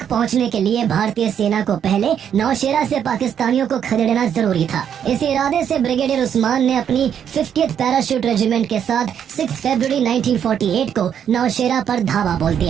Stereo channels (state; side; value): quieter; left; 8.7 dB